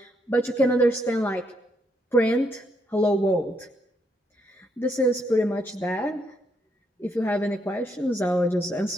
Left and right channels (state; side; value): normal; both; correlation 0.76